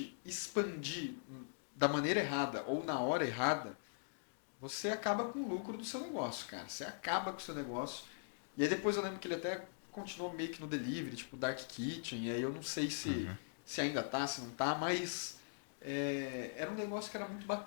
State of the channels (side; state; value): right; silent; digital silence